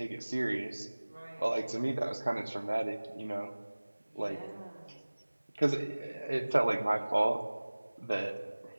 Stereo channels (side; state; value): both; inverted; correlation -1.00